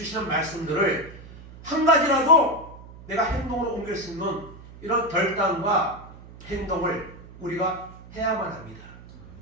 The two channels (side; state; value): right; noise; hum, 18 dB below the sound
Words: 말씀들을 한 가지라도 내가 행동으로 옮길 수 있는 이런 결단과 행동을 우리가 해야만 합니다.